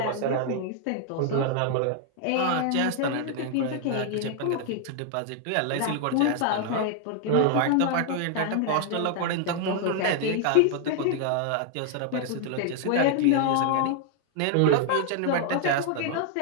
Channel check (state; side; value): different; both; correlation 0.00